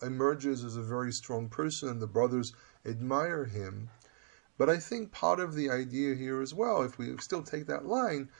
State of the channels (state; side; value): silent; left; digital silence